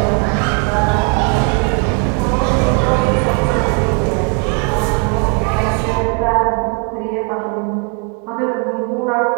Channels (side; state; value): left; quieter; 36.1 dB